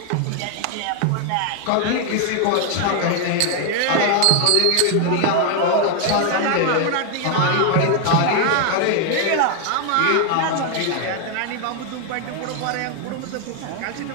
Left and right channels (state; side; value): different; both; correlation 0.01